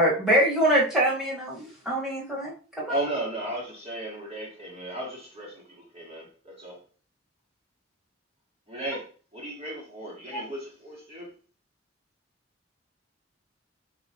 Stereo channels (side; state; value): both; normal; correlation 0.17